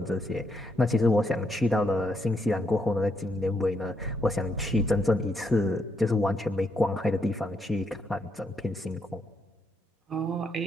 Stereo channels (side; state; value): both; normal; correlation 0.77